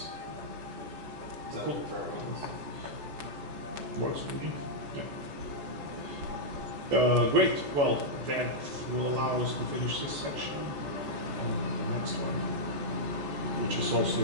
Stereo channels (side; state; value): left; late; 14 ms